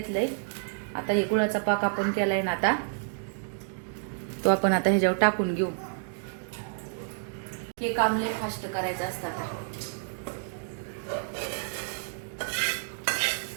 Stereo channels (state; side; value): silent; left; digital silence